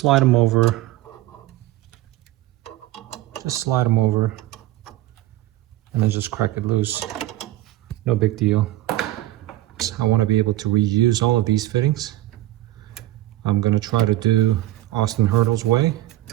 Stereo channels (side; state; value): left; quieter; 15.3 dB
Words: them over. And then just crack it loose. No big deal. I want to be able to reuse all of these fittings. I'm going to try to do Austin Hertel's way.